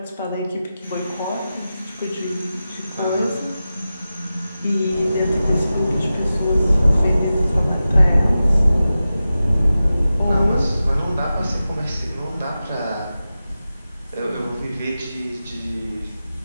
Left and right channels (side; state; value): both; inverted; correlation -0.93